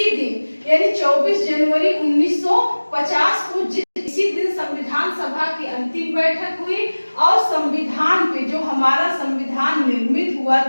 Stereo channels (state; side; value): inverted; both; correlation -1.00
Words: दिन यानी 24 जनवरी 1950 को इसी दिन संविधान सभा की अंतिम बैठक हुई और संविधान पे, जो हमारा संविधान निर्मित हुआ